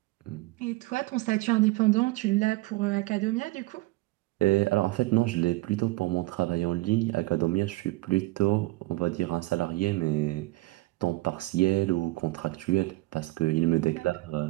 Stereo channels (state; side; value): quieter; left; 20.3 dB